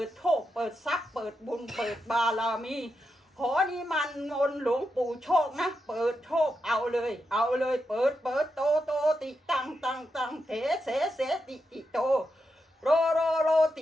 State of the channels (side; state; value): both; normal; correlation 0.86